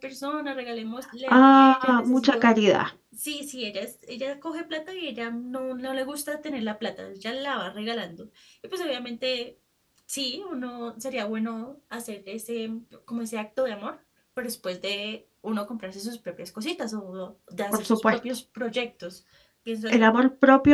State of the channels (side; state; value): both; identical; correlation 1.00